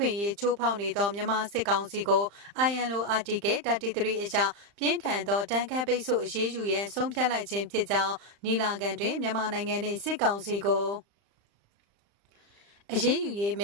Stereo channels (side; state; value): left; late; 35 ms